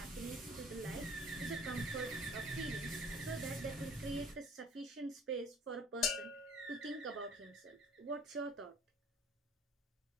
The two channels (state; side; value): normal; both; correlation 0.51